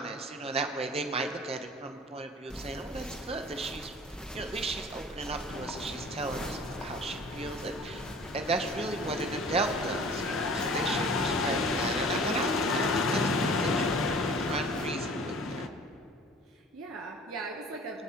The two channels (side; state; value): both; normal; correlation 0.46